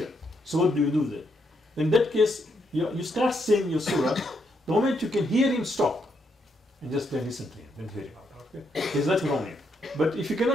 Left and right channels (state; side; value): normal; both; correlation 0.77